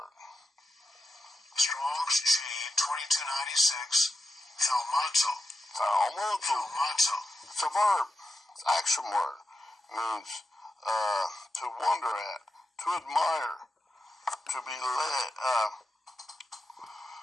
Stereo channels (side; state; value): both; normal; correlation 0.89